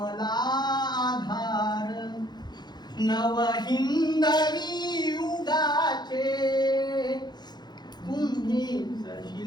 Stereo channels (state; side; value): late; right; 0.21 ms